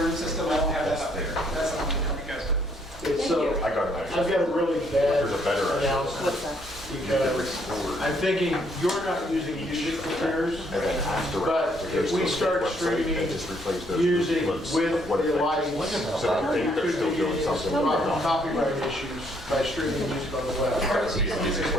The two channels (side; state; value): both; normal; correlation 0.68